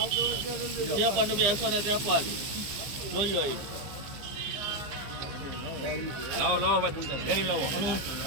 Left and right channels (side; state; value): left; late; 15 ms